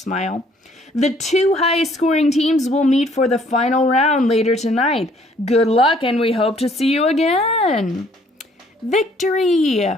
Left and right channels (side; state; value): both; normal; correlation 0.62